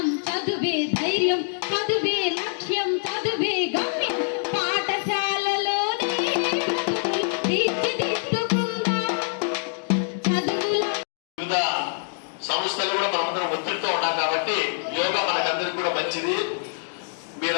చదువే ధైర్యం, చదువే లక్ష్యం, చదువే గమ్యం. పాఠశాలలోనే తీర్చిదిద్దుకుందాం చదువుల. సంస్థలు కూడా మనందరం ఒత్తిడితో ఉన్నాం కాబట్టి యోగా మనకందరికి కూడా మంచిది.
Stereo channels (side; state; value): right; silent; digital silence